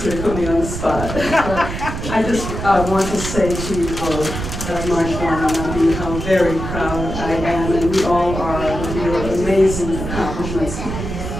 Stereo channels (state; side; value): noise; right; rumble, 6 dB below the sound